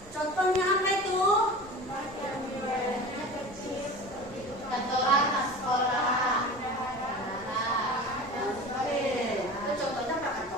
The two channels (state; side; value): normal; both; correlation 0.35